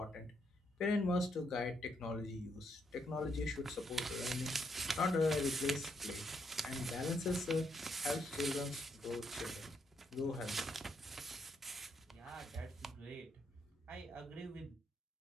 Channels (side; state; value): both; normal; correlation 0.76